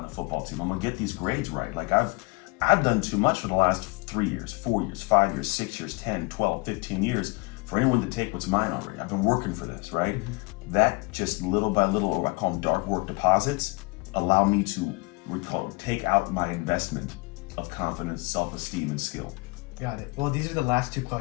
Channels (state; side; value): quieter; right; 27.7 dB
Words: in the football team. I'm gonna get these grades right. Like, I've done too much for the last 3 years, 4 years, 5 years, 6 years, 10, 12, 15 years for anyone to take what's mine already. I've been working for this, right? Mm-hmm. That just little by little, or I call them dark work deposits, allow me to take out my investment of confidence, self-esteem, and skill. Got it. Well, these are the last two